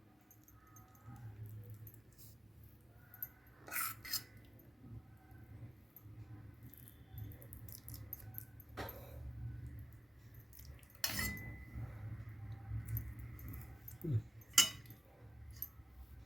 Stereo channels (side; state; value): both; normal; correlation 0.95